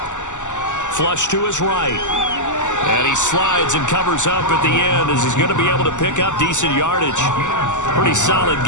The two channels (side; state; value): right; late; 0.85 ms